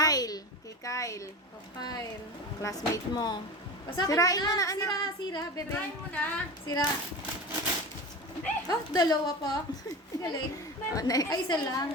Kay Kyle. Profile. Classmate mo. Basa Sirain mo na, anak. Sira, bebe. Sirain mo na. Sira. Oh, dalawa pa. Galing. Oh, next. Ay, isa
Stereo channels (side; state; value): both; normal; correlation 0.29